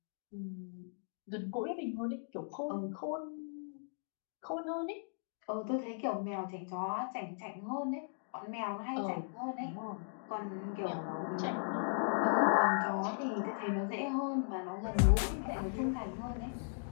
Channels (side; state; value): right; silent; digital silence